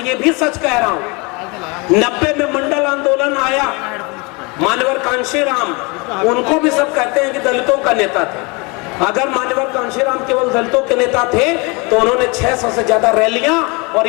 ये भी सच कह रहा हूं, 90 में मंडल आंदोलन आया, मान्यवर कांशीराम, उनको भी सब कहते हैं कि दलितों का नेता थे। अगर मान्यवर कांशीराम केवल दलितों के नेता थे तो उन्होंने 600 से ज्यादा रैलियां और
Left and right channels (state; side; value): quieter; right; 28.4 dB